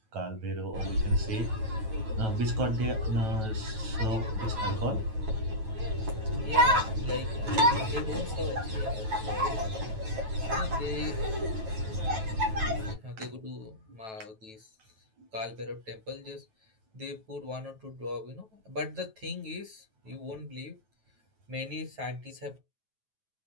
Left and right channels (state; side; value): late; left; 9.2 ms